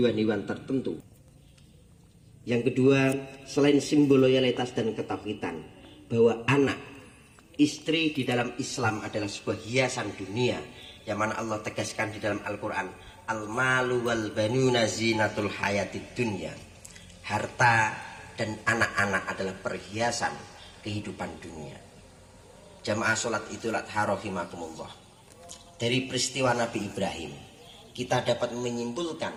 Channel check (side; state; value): both; identical; correlation 1.00